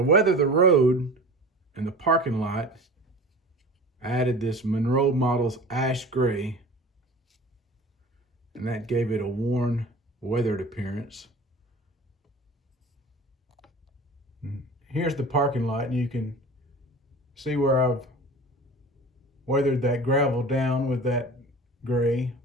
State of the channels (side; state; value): both; normal; correlation 0.38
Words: weather the road and the parking lot, I added this Monroe Models ash gray, and that gave it a worn, weathered appearance. And here's the parking lot, and you can see where I've weathered that gravel down with that gray.